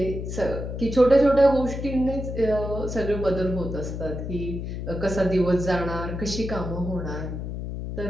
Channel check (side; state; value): left; noise; hum, 5 dB below the sound